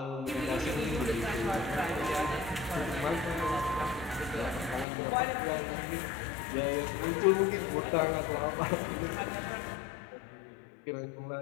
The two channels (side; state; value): right; drops out; at 4.9 s